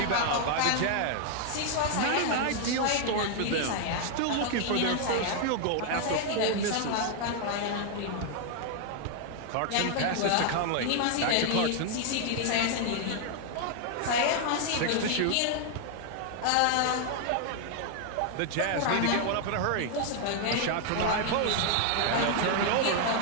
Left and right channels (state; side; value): different; both; correlation 0.00